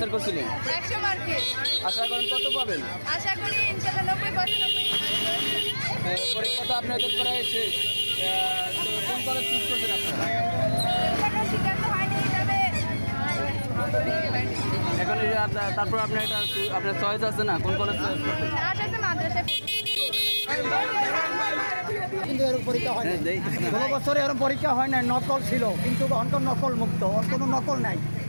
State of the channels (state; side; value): inverted; both; correlation -1.00